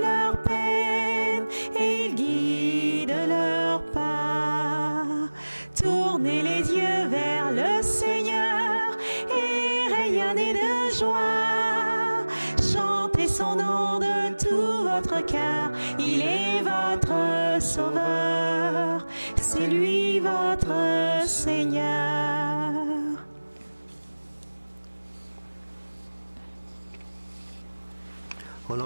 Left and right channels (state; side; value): inverted; both; correlation -1.00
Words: leur peine et il guide leur pas. Tournez les yeux vers le Seigneur et rayonnez de joie. Chantez son nom de tout votre cœur, il est votre Sauveur, c'est lui votre Seigneur. Au